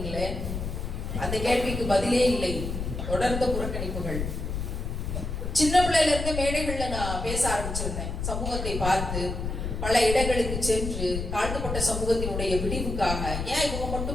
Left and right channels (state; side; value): noise; left; rumble, 4 dB below the sound